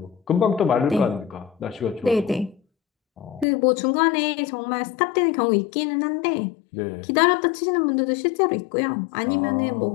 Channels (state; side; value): drops out; right; at 3.5 s